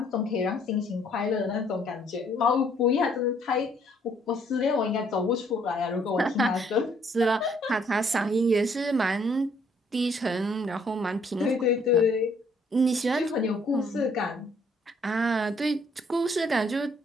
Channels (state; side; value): normal; both; correlation 0.65